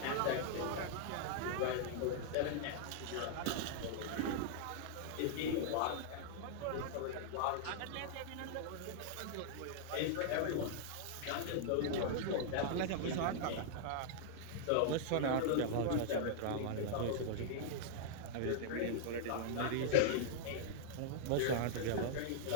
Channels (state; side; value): different; both; correlation -0.01